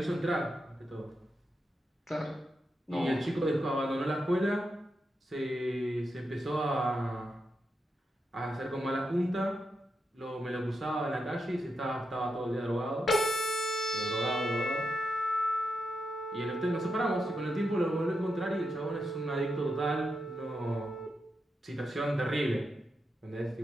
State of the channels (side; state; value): both; normal; correlation 0.85